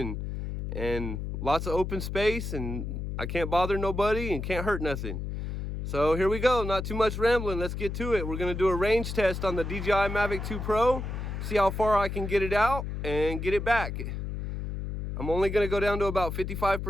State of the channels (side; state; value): left; noise; hum, 5 dB below the sound